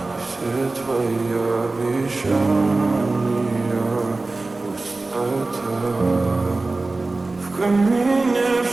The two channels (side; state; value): left; quieter; 3.3 dB